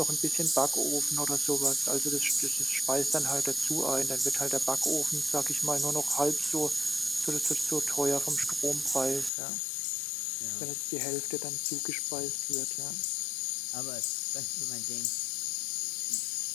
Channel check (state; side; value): drops out; right; at 9.3 s